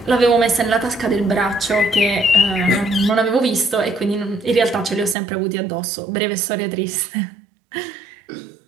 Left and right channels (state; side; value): drops out; left; at 5.2 s